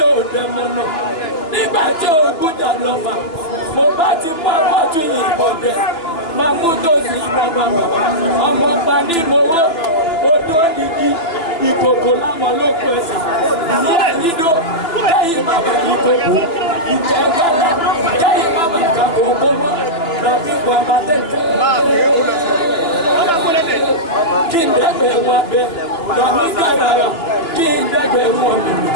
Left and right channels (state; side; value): late; right; 3.0 ms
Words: ò dẹ̀mọ̀ náà. Nígbà tí ogún jà lọ́fà, mo bá ti mú àpọ̀tù yìnbọn dẹ̀. Máa mú tòsí ìbọn bàbà. Ọmọ pa ní mowó. Odó nìkí. Ìkòkò láwọn ló kù ẹsẹ̀. Ìyá ìyídó. Kẹ́yìn bàbá ìkòkò. Ìjẹ́ kálá. Kẹ́yìn bàbá ìkàkòkò mọ́. Tàbí bàbá tẹ̀tẹ̀. Kí n dẹ́gbẹ̀ wọn abẹ. Tàbí kàràrà. Kí n dẹ́gbẹ̀ wọn mẹ̀mẹ̀.